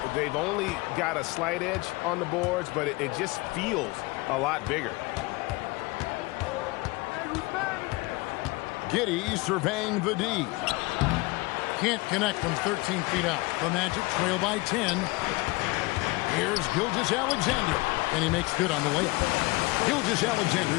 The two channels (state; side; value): quieter; right; 23.6 dB